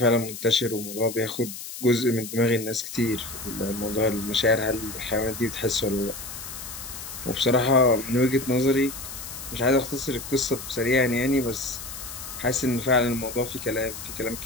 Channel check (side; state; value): left; noise; hiss, 10 dB below the sound